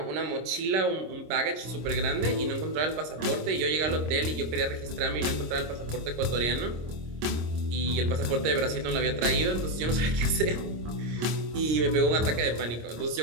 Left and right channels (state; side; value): late; left; 26 ms